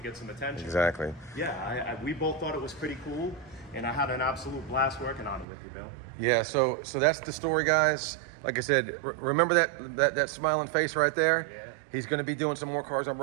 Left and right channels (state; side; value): drops out; left; at 5.5 s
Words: get some attention. Exactly. Yeah, we both thought it was pretty cool, and I had an absolute blast working on it with you, Bill. Yeah, so that's the story, guys. Like I said, remember that smiling face right there? Yeah. He's going to be doing some more cars on